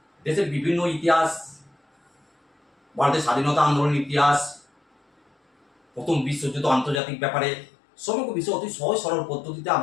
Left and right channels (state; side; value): drops out; right; at 7.0 s